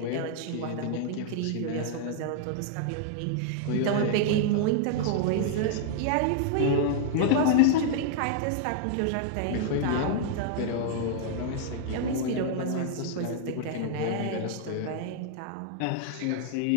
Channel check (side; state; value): both; different; correlation 0.00